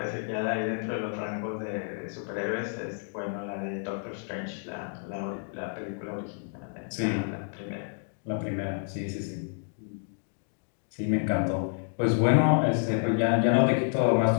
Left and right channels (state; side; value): silent; right; 58 dB below the other